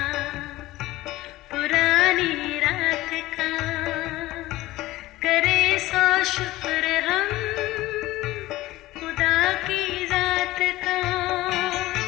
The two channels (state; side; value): quieter; right; 17.5 dB